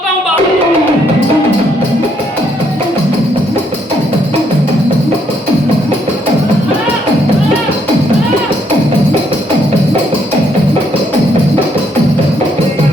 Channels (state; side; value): normal; both; correlation 0.71